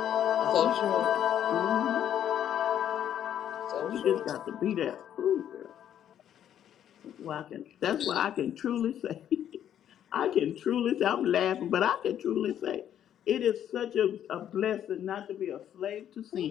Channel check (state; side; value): quieter; right; 10.2 dB